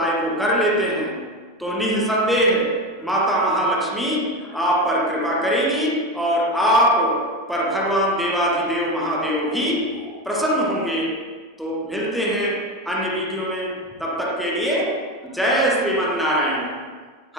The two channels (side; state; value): both; normal; correlation 0.20